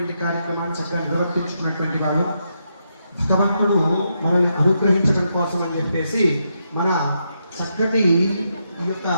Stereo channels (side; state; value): both; inverted; correlation -0.82